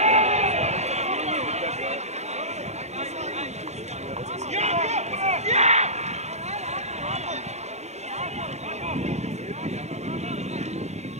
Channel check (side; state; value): left; late; 0.32 ms